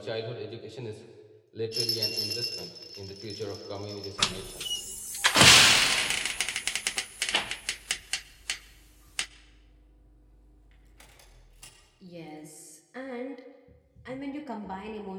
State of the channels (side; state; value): both; identical; correlation 1.00